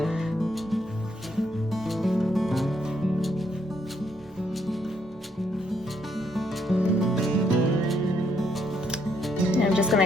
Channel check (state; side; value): normal; both; correlation 0.74